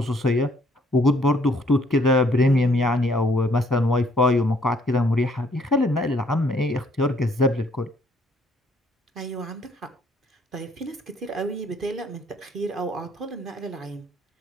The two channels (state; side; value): normal; both; correlation 0.64